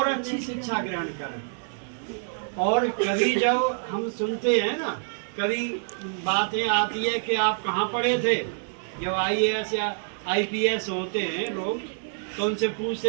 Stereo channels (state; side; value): silent; left; 60 dB below the other